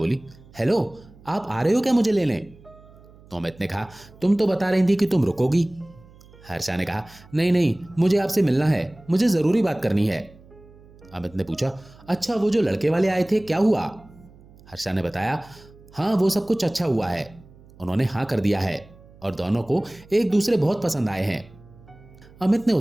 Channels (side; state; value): right; noise; hum, 24 dB below the sound